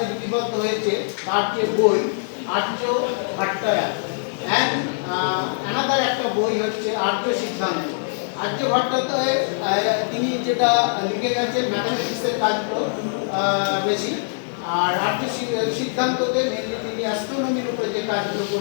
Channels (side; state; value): right; silent; digital silence